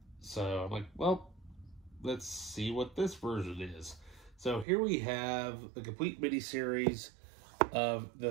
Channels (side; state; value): left; drops out; at 4.7 s